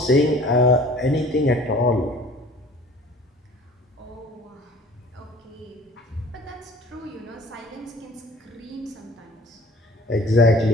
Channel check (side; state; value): both; normal; correlation 0.49